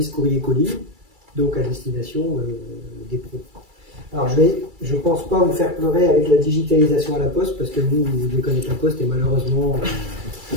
courrier-colis, donc à destination des pros. Alors je pense pas vous faire pleurer avec la digitalisation à la Poste, parce que vous devez connaître la Poste et malheureusement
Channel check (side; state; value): left; late; 2.3 ms